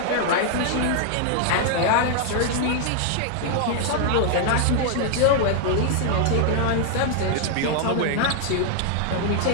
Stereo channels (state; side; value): different; both; correlation 0.00